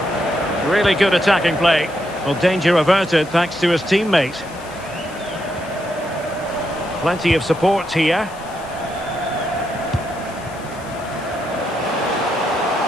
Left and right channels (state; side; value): noise; left; hiss, 22 dB below the sound